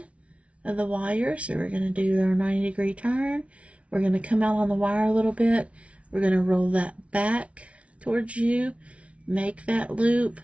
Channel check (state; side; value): late; left; 0.063 ms